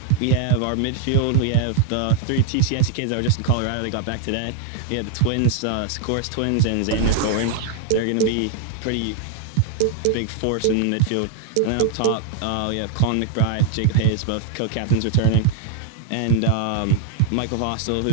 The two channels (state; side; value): different; both; correlation 0.00